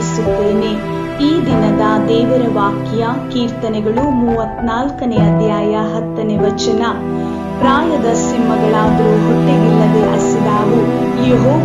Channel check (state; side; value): identical; both; correlation 1.00